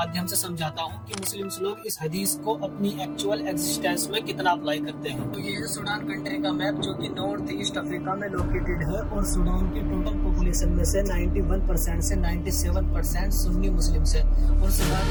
से समझाता हूँ कि मुस्लिम्स लोग इस हदीस को अपनी एक्चुअल एग्जिस्टेंस में कितना अप्लाई करते हैं। तो ये है सूडान कंट्री का मैप, जो कि नॉर्थ ईस्ट अफ्रीका में लोकेटेड है और सूडान की टोटल पॉपुलेशन में से 91% से 97% सुन्नी मुस्लिम्स है और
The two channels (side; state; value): both; identical; correlation 1.00